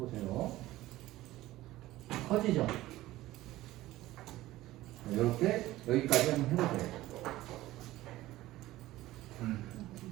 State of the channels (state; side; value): quieter; left; 16.5 dB